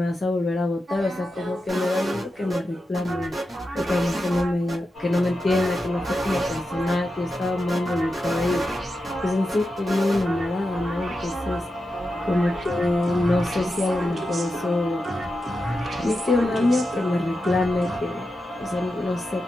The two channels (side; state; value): both; normal; correlation 0.89